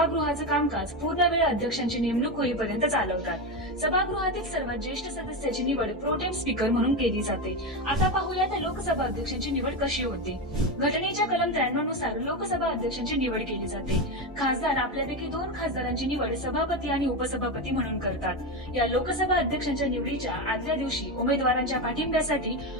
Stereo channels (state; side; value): normal; both; correlation 0.14